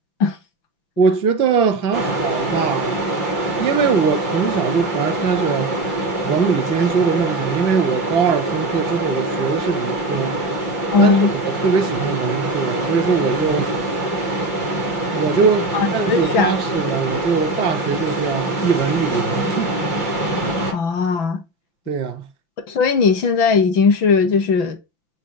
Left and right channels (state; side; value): late; right; 5.9 ms